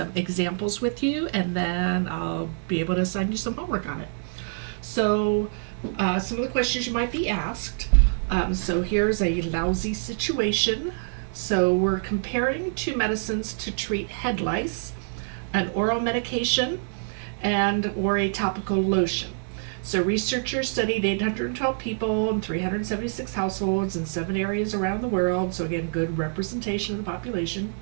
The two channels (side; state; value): left; silent; digital silence